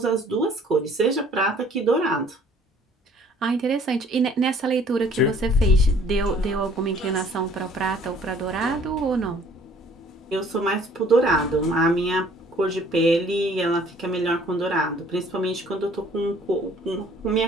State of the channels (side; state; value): both; normal; correlation 0.57